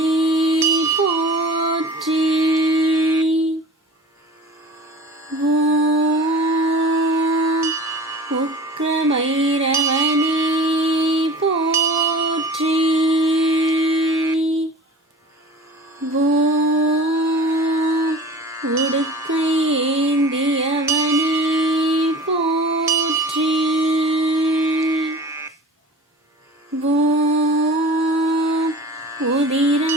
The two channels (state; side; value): normal; both; correlation 0.40